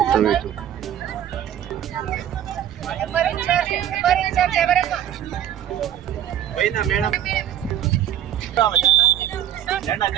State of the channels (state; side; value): quieter; left; 10.8 dB